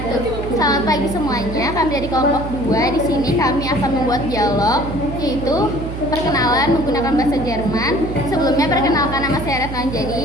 Selamat pagi semuanya. Kami dari kelompok 2. Di sini kami akan membuat dialog, yaitu perkenalan menggunakan bahasa Jerman. Sebelumnya perkenalkan, nama saya Retno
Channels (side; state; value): right; noise; hum, 7 dB below the sound